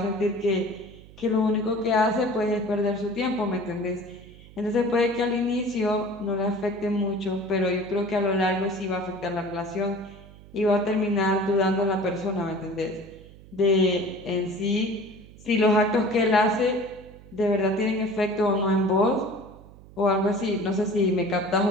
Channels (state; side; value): noise; right; hum, 21 dB below the sound